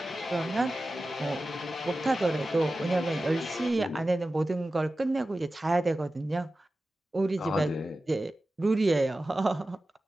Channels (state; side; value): normal; both; correlation 0.94